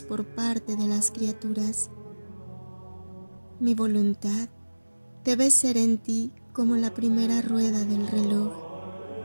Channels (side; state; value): both; inverted; correlation -1.00